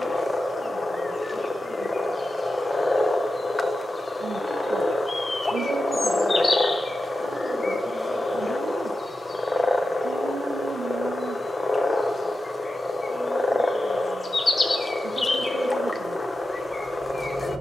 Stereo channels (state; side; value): normal; both; correlation 0.91